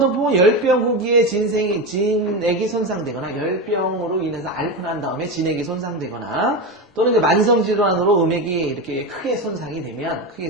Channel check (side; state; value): both; normal; correlation 0.18